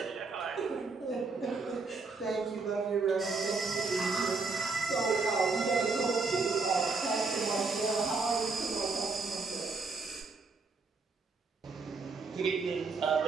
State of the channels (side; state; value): left; quieter; 4.2 dB